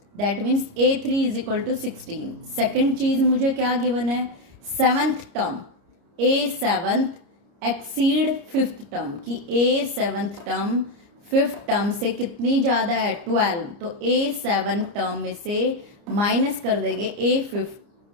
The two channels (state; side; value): late; left; 30 ms